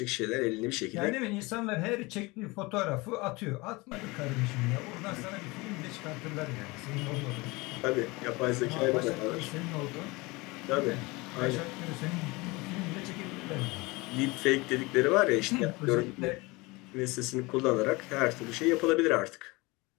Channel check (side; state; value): right; quieter; 23.9 dB